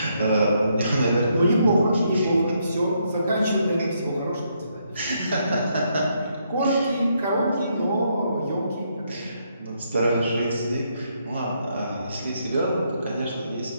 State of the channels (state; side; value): inverted; both; correlation -0.75